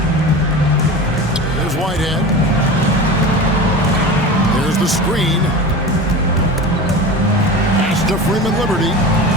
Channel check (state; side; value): normal; both; correlation 0.31